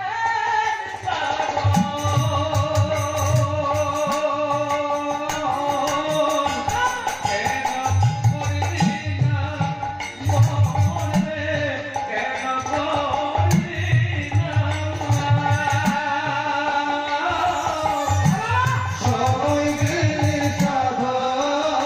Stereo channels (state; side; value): identical; both; correlation 1.00